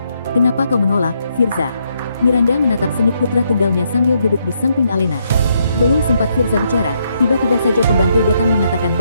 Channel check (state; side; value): inverted; both; correlation -0.75